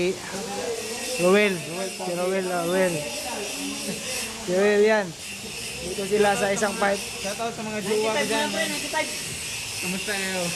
Roel. Si Roel. Si Roel yan. Dito sila sa isang pipe. Shoutout sa mga jowa ko dyan. 95. Kamusta kayo?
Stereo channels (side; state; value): both; identical; correlation 1.00